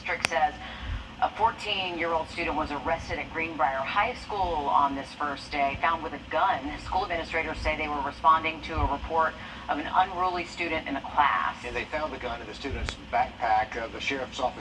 says a 14-year-old student was arrested at Greenbrier High School on this first day, found with a gun. School administrators say they were responding to a report of an unruly student in a class. And they found the gun in the student's backpack. The sheriff's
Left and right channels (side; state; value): both; identical; correlation 1.00